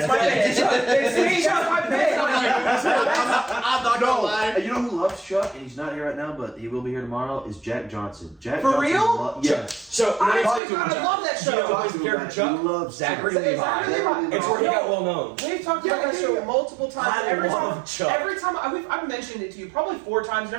my pick. It's me. That's my pick. I'm not gonna lie. You know who loves Chuck, and he's not here right now, but he will be here tomorrow, is Jack Johnson. Jack For Johnson real? yes. So I talk to him. love that You know show. who's the character He Chuck? loves Zachary Chuck. Levi. Zachary Levi. It's where he got well known. We've talked about that show multiple times. I Every love time, Chuck. every time I've mentioned it to you probably 4 times, and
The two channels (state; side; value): drops out; left; at 10.6 s